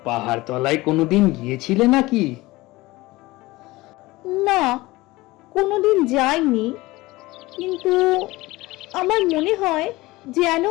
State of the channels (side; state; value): right; quieter; 20.1 dB